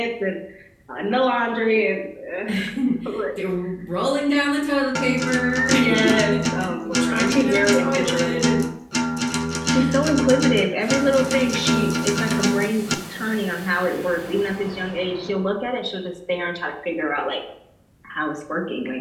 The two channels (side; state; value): both; identical; correlation 1.00